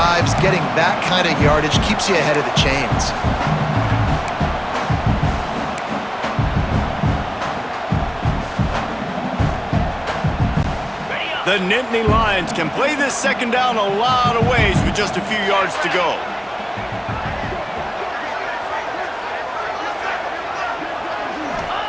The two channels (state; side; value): identical; both; correlation 1.00